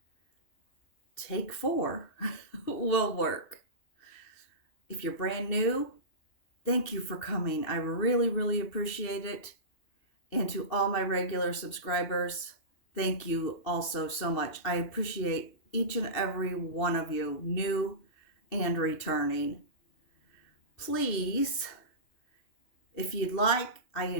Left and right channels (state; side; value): late; right; 2.7 ms